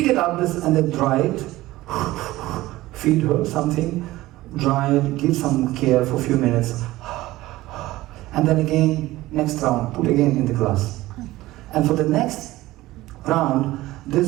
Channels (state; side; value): quieter; left; 17.4 dB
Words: it up and then dry it, feed her something, dry it, give some care for a few minutes, and then again, next round, put again in the glass. And for the next round,